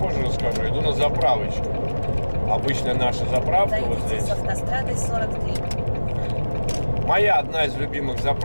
расскажу. Иду на заправочку. Обычная наша заправка вот здесь. С автострады 43. Моя одна из любимых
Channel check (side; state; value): both; inverted; correlation -1.00